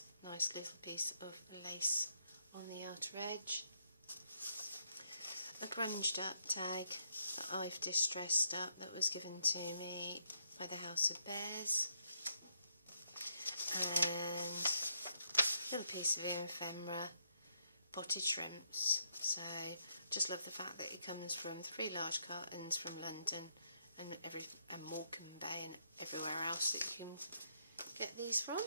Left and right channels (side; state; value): both; inverted; correlation -0.76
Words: nice little piece of lace on the outer edge. A grunged up tag that I've distressed up that was given to me by the House of Bears, and a little piece of ephemera, potted shrimps. So just love the fact that it comes from 3 large cartons from London and Morecambe Bay and everywhere else that you can get these from.